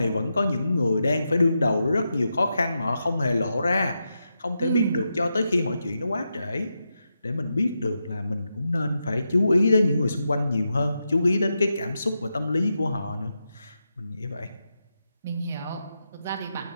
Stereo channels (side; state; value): both; inverted; correlation -0.87